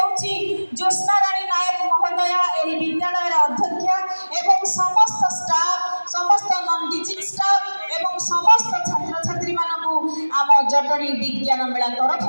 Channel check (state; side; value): inverted; both; correlation -1.00